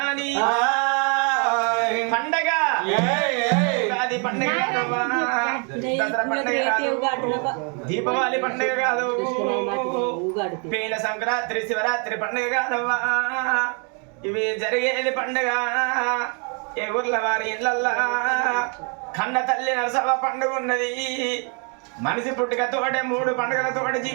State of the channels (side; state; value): left; quieter; 37.9 dB